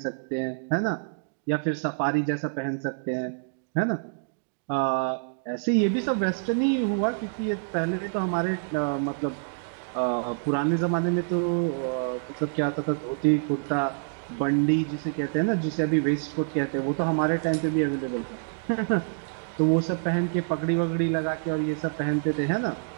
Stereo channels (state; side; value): silent; left; digital silence